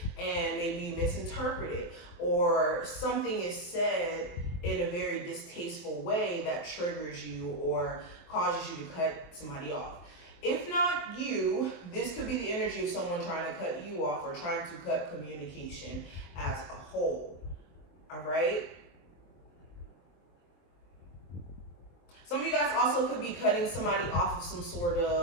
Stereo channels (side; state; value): right; late; 23 ms